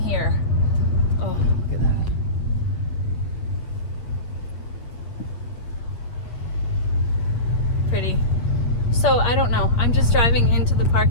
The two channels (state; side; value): late; right; 8.8 ms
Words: Oh, look at that. Pretty. So I don't know, I'm just driving into the